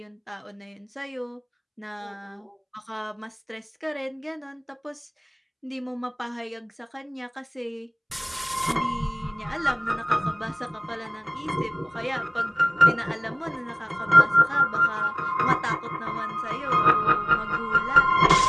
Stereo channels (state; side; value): identical; both; correlation 1.00